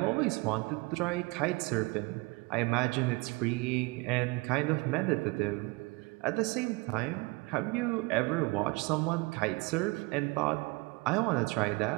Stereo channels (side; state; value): left; quieter; 25.7 dB